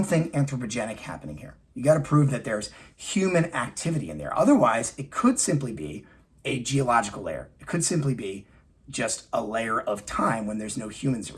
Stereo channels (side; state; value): both; identical; correlation 1.00